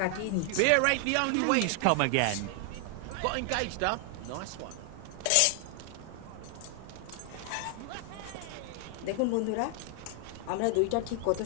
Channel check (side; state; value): both; different; correlation 0.00